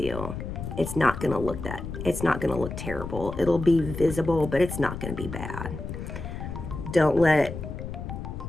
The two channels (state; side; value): noise; left; rumble, 7 dB below the sound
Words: It's not gonna look terrible. It'll be visible, but it's not gonna be bad. Don't let